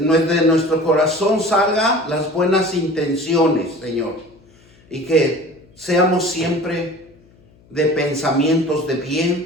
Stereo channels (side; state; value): left; noise; hum, 29 dB below the sound